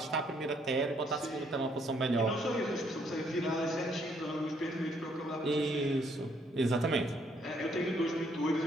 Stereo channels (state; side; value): normal; both; correlation 0.69